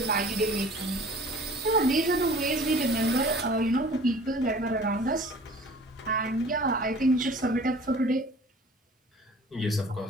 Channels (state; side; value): normal; both; correlation 0.47